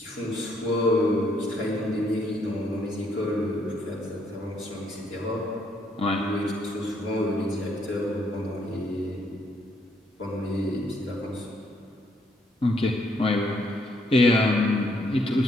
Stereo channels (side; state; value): both; normal; correlation 0.71